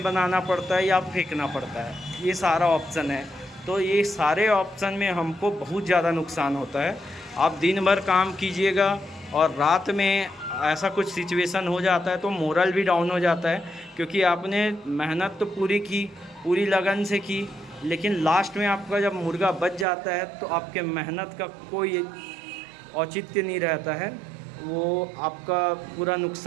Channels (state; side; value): drops out; left; at 19.9 s